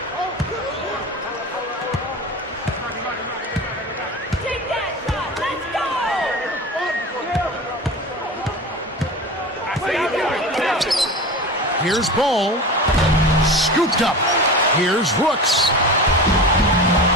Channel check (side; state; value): both; normal; correlation 0.31